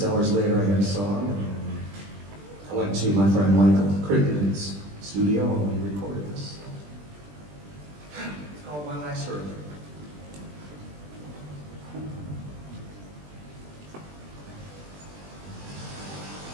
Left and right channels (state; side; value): late; left; 20 ms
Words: hours later I had a song, and I went to my friend Michael Crittenden's studio, and we recorded this. It's called One Last Hurricane.